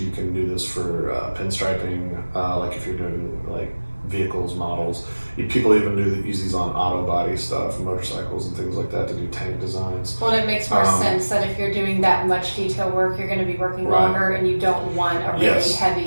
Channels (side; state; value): both; inverted; correlation -1.00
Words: can do this for pinstriping, if you're doing vehicles, models. People even use these on auto body stuff, motorcycles and things like that to do tank designs. Well, it makes more sense that if you're doing that much detail work, you're going to be working longer, and you don't want a really